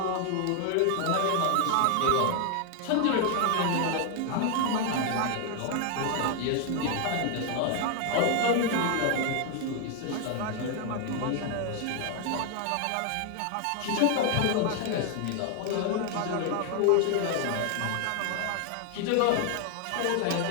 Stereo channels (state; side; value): different; both; correlation 0.00